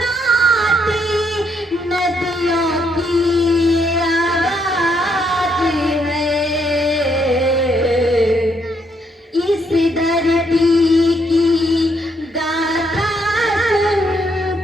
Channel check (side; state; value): both; normal; correlation 0.74